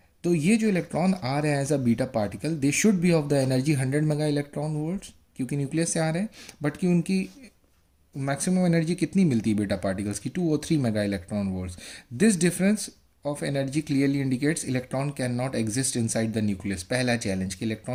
तो ये जो इलेक्ट्रॉन आ रहे हैं as a beta particle, they should be of the energy 100 mega electron volts, क्योंकि न्यूक्लियस से आ रहे हैं। बट कि उनकी मैक्सिमम एनर्जी कितनी मिलती है बीटा पार्टिकल्स की, 2 और 3 mega electron volts. This difference of energy clearly indicates electron can not exist inside the nucleus. पहला चैलेंज कि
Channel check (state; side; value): identical; both; correlation 1.00